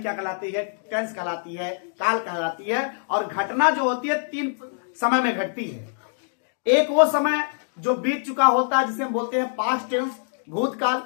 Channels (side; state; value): right; silent; digital silence